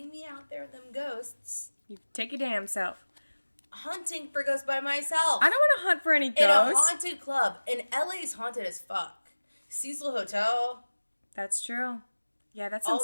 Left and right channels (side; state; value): both; inverted; correlation -1.00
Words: me out there with them ghosts, You take your damn self. hunting for ghosts by myself. I don't want to hunt for any in a ghosts. haunted club. And LA's haunted as fuck. Cecil Hotel, That's true. Yeah, that's some all